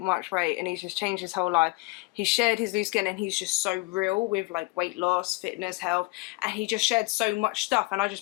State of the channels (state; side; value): quieter; right; 25.9 dB